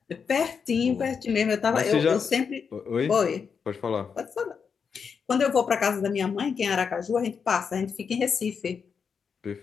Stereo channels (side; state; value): right; quieter; 6.2 dB